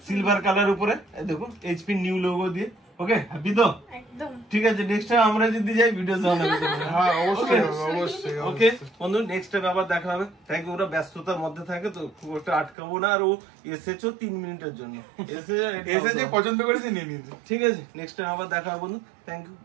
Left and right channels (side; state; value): left; drops out; at 12.8 s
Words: সিলভার কালার উপরে দেখুন, এইচপি নিউ লোগো দিয়ে। ওকে, হ্যাপি তো? একদম ঠিক আছে। নেক্সট টাইম আমরা যদি যাই, ভিডিও বানাবো। হ্যাঁ, অবশ্যই অবশ্যই। ওকে বন্ধু, নেক্সট টাইম আবার দেখা হবে। Thank you. ওরা ব্যস্ততার মধ্যে থাকে, তো খুব একটা আটকাবো না। আর ও এসেছো 3 মিনিটের জন্য, এসে যে পছন্দ করেছে নিয়ে নিয়েছে, ঠিক আছে? নেক্সট টাইম আবার দেখা হবে বন্ধু। থ্যাংক ইউ,